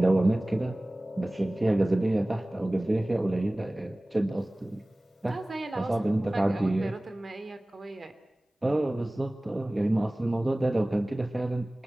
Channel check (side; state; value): both; normal; correlation 0.98